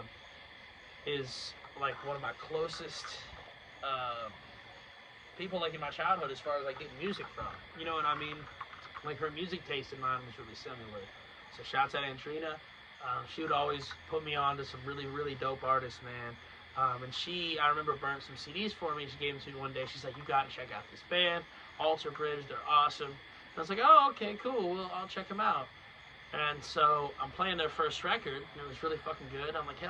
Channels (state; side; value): identical; both; correlation 1.00